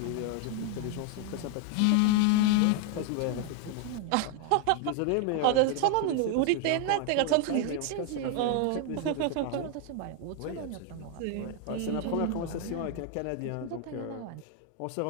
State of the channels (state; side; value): different; both; correlation 0.01